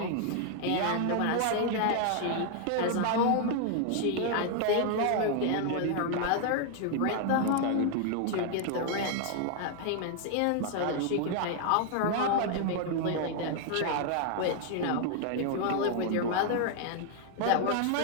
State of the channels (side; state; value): both; different; correlation 0.00